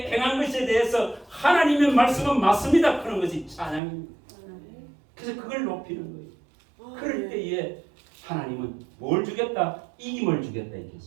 행한 것에 대해서 하나님의 말씀은 맞습니다. 그런 것이 찬양입니다. 그래서 그걸 높이는 거예요. 그럴 때에 하나님은 뭘 주겠다? 이김을 주겠다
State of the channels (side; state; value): left; drops out; at 3.8 s